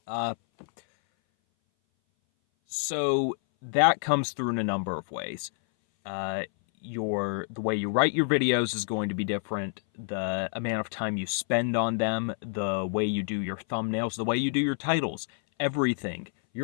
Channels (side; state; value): right; silent; 58 dB below the other